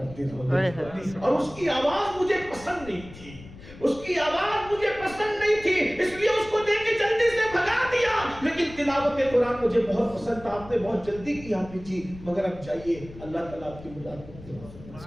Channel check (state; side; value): noise; left; rumble, 17 dB below the sound